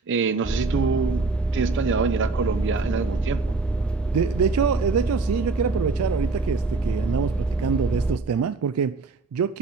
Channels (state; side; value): quieter; left; 4.0 dB